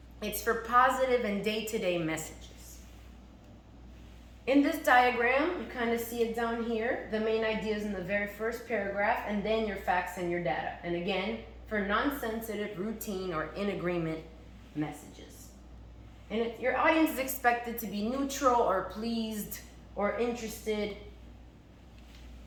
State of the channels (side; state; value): both; identical; correlation 1.00